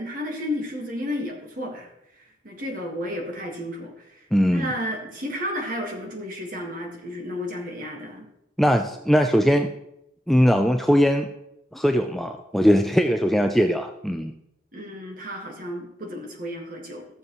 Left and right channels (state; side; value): normal; both; correlation 0.87